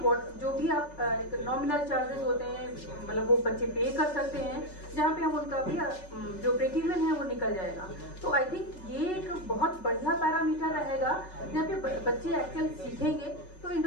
जो भी आप नॉमिनल चार्जेस होते हैं, मतलब वो बच्चे पे कर सकते हैं, जहाँ पे हम उनका भी जो ब्रेक इवन है वो निकल जाएगा। तो आई थिंक ये एक बहुत बढ़िया पैरामीटर रहेगा जहाँ पे बच्चे एक्चुअल सीखेंगे। तो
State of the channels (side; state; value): right; late; 5.4 ms